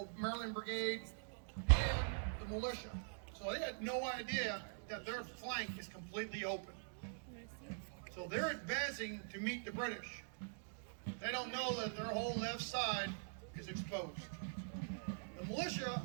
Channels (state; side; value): silent; left; digital silence